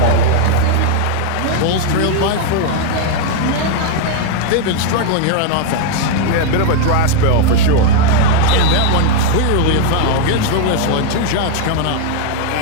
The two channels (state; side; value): different; both; correlation 0.00